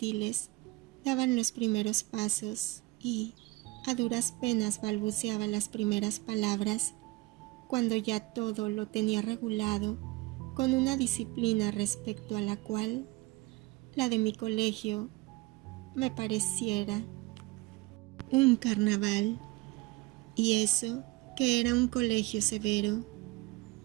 daban los primeros pasos y a duras penas balbuceaba las primeras palabras, cuando ya todo lo tenía regulado con una disciplina respecto a la cual la de mi colegio me pareciera un carnaval, y eso que era un colegio severo.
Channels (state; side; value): quieter; left; 21.4 dB